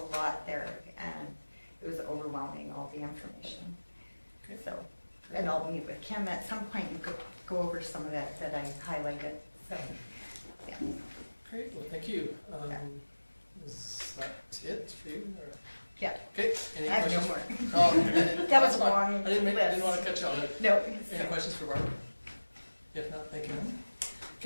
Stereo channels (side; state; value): both; inverted; correlation -1.00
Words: lot there, and it was overwhelming, all the information. Okay. So, and I'll meet with Kim at some point. You could go over some of that I highlighted. So, yeah. Great, well, thank you. Yeah. Is that it for you? Or? Yeah. Okay, any I have no questions? more. Oh, That was that's fine. long I didn't list. want to cut you off. No. Any questions for Barbara? If not, thank you.